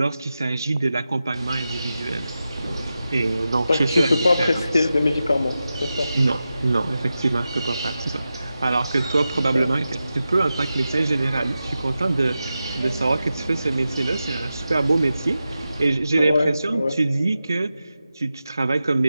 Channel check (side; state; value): both; inverted; correlation -0.92